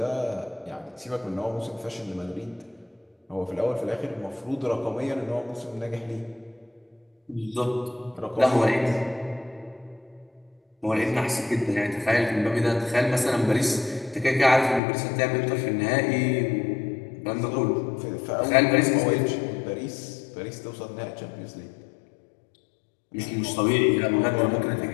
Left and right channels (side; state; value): right; drops out; at 14.8 s